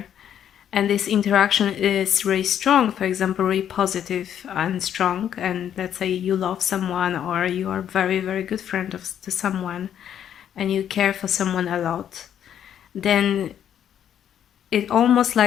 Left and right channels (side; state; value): right; quieter; 9.7 dB